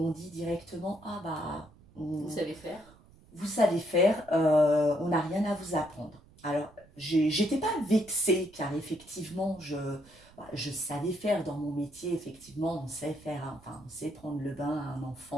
dit directement vous savez faire. Vous savez faire, on n'a rien à vous apprendre. Alors, j'étais pas vexée car effectivement, je savais faire dans mon métier, effectivement, on sait faire, enfin, on sait prendre le bain à un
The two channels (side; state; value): right; noise; rumble, 25 dB below the sound